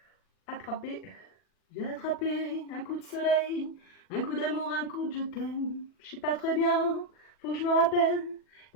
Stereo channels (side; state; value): right; late; 40 ms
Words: attrapé, j'ai attrapé un coup de soleil, un coup d'amour, un coup de je t'aime, je sais pas très bien, faut que je me rappelle.